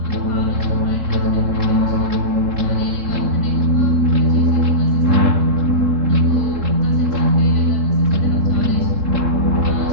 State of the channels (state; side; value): late; left; 3.7 ms